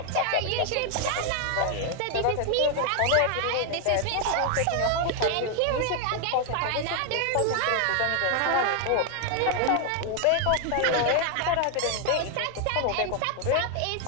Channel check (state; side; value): different; both; correlation 0.00